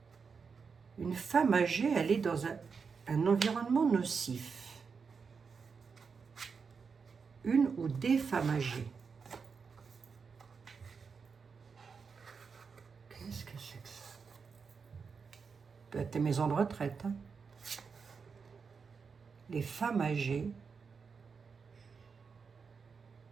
Une femme âgée, elle est dans un environnement nocif. Une ou des femmes âgées. Qu'est-ce que c'est que ça? Peut-être des maisons de retraite. Hein? Les femmes âgées,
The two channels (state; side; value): quieter; left; 5.5 dB